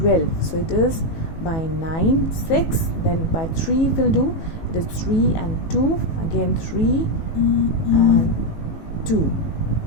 So it is by 9, 6, then by 3 will do. It is 3 and 2, again 3 and 2.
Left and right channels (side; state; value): right; late; 18 ms